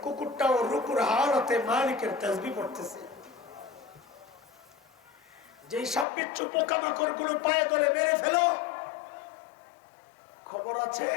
কুকুরটাও রুকুর হালতে মালিকের তাসবিহ পড়তেছে। যে সাপবিচ্ছু পোকামাকড় গুলো পায়ে ধরে মেরে ফেলো, খবর আছে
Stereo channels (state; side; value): drops out; right; at 6.1 s